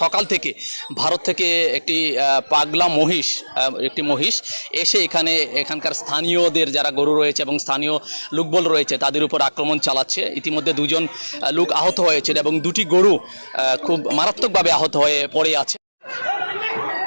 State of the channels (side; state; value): both; inverted; correlation -1.00